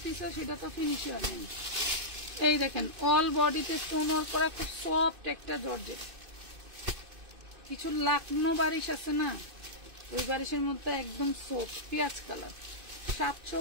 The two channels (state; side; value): late; left; 2.5 ms